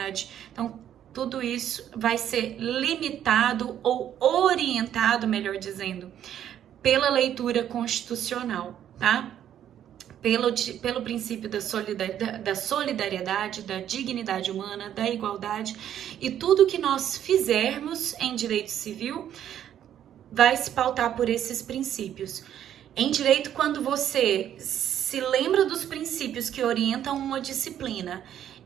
Então, tudo isso vai ser limitado ou orientado, melhor dizendo, pela leitura constitucional, tá? Pelo princípio da solidariedade, da dignidade humana, da igualdade, e tudo que nós fizermos em direito civil vai se pautar por esses princípios. Em direito, quando você se lembra dos princípios que orientam uma disciplina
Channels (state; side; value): quieter; left; 10.4 dB